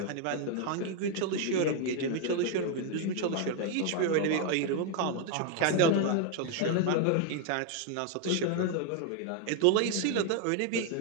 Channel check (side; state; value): both; different; correlation 0.01